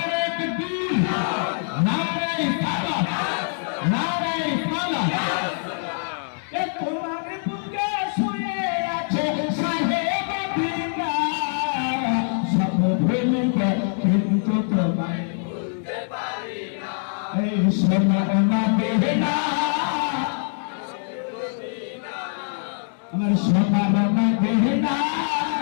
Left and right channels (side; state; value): right; silent; digital silence